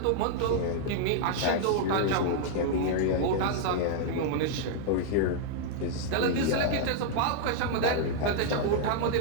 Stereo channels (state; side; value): different; both; correlation -0.01